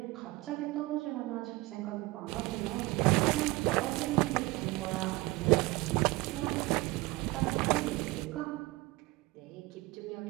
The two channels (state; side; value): quieter; left; 21.2 dB